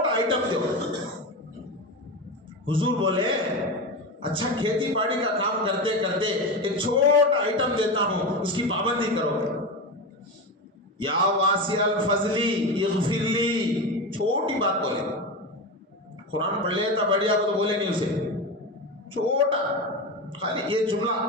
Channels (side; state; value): both; normal; correlation 0.20